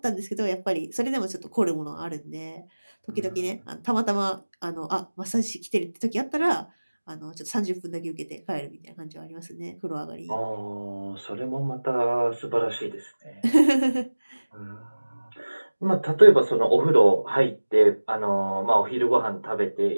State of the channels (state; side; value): inverted; both; correlation -1.00